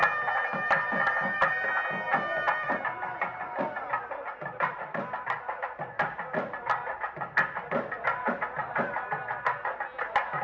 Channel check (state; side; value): identical; both; correlation 1.00